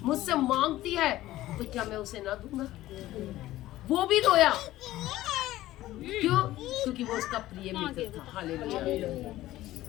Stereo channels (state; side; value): quieter; right; 15.5 dB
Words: मुझसे मांगती है, तो क्या मैं उसे ना दूंगा? वो भी रोया। क्यों? क्योंकि वो उसका प्रिय मित्र था। हालेलुया।